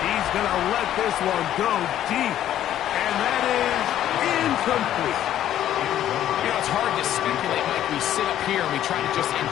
He's going to let this one go deep. And that is incomplete. You know, it's hard to speculate, Mike. We sit up here and we try to just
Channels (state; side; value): quieter; right; 11.7 dB